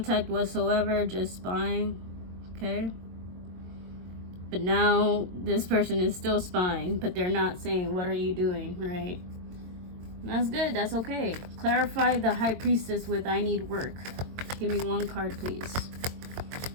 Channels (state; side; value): late; left; 22 ms